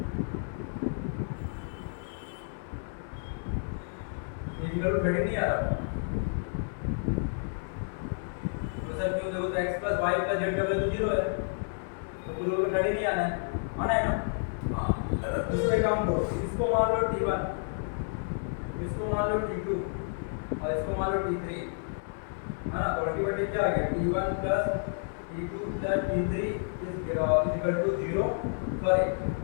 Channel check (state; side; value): silent; right; 57 dB below the other